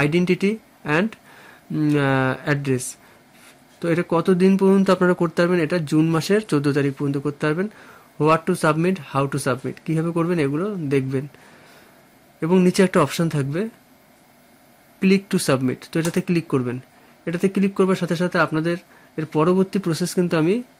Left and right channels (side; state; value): both; identical; correlation 1.00